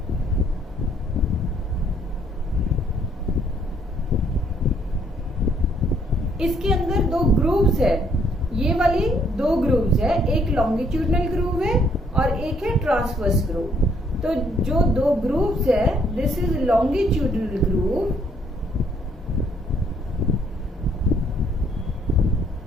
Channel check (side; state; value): both; normal; correlation 0.67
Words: इसके अंदर दो ग्रूव्स है, ये वाली दो ग्रूव्स है, एक लॉन्गिट्यूडनल ग्रूव है और एक है ट्रांसवर्स ग्रूव। तो जो दो ग्रूव्स है, this is longitudinal groove